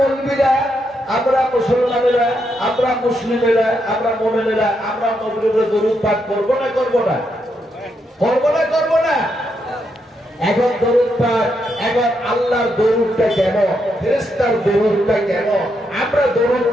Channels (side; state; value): both; normal; correlation 0.80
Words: আমরা মুসলমানেরা, আমরা মুসলিমেরা, আমরা মুমিনেরা আমরা নবীর উপরে দরুদ পাঠ করব না করব না? করব না করব না? এখন দরুদ পাঠ, এখন আল্লাহর দরুদটা কেমন, ফেরেশতার দরুদটা কেমন, আমরা দরুদ